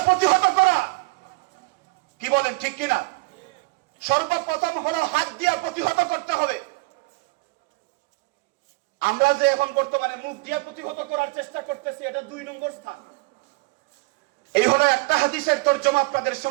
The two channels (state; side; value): quieter; left; 25.3 dB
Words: প্রতিহত করা। কি বলেন, ঠিক কিনা? সর্বপ্রথম হলো হাত দিয়ে প্রতিহত করতে হবে। আমরা যে এখন বর্তমানে মুখ দিয়ে প্রতিহত করার চেষ্টা করতেছি, এটা 2 নম্বর স্থান। এই হলো একটা হাদিসের তরজমা আপনাদের